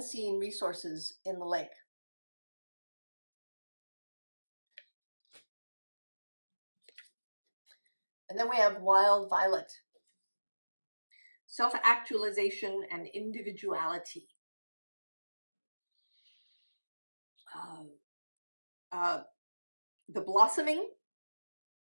resources in the lake. And then we have wild violet. Self-actualization and individuality. The blossoming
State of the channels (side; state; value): both; inverted; correlation -1.00